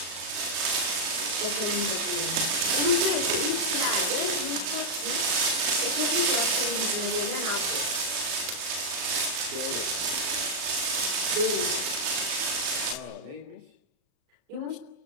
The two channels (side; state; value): left; late; 36 ms